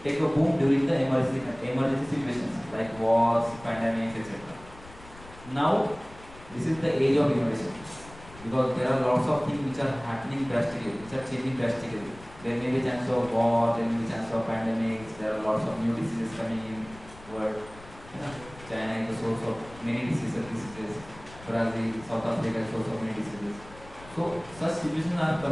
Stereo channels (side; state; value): left; noise; rumble, 20 dB below the sound